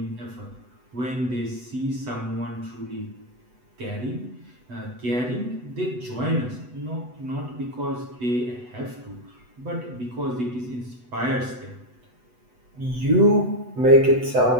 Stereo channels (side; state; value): left; late; 8.1 ms